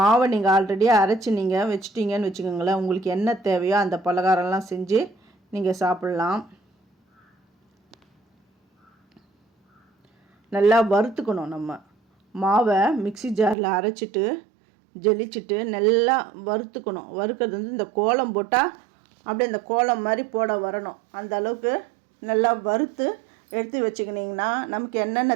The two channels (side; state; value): left; drops out; at 13.6 s